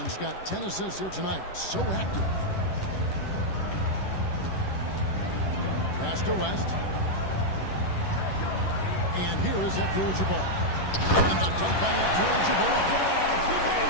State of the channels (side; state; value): right; late; 11 ms